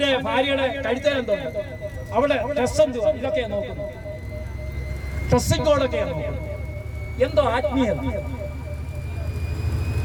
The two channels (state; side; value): identical; both; correlation 1.00